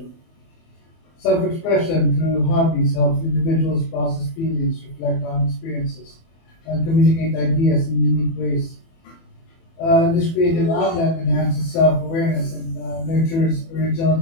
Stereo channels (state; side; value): late; right; 24 ms